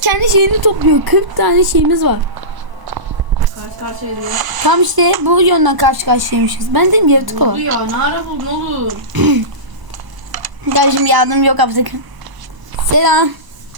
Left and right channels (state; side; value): late; left; 1.0 ms